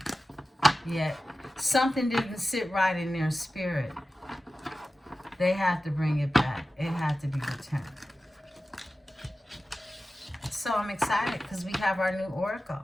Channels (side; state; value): both; normal; correlation 0.95